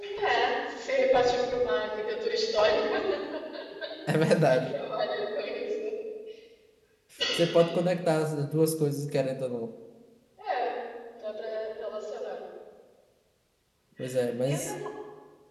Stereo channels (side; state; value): both; identical; correlation 1.00